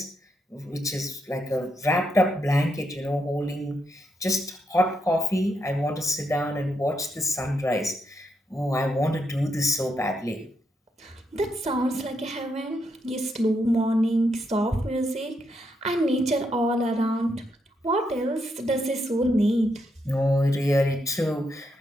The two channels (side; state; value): both; normal; correlation 0.80